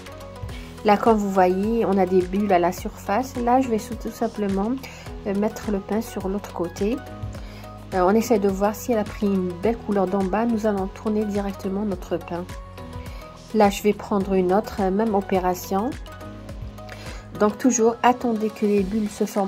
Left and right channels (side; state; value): both; identical; correlation 1.00